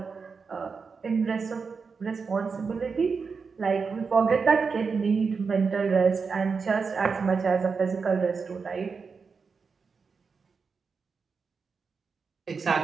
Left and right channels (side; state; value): left; quieter; 5.2 dB